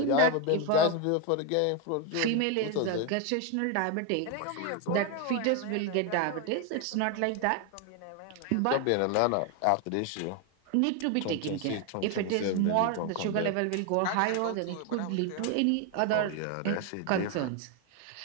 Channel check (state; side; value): different; both; correlation 0.01